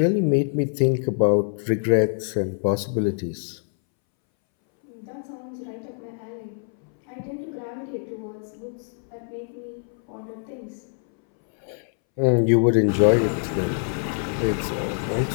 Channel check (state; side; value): silent; right; 62 dB below the other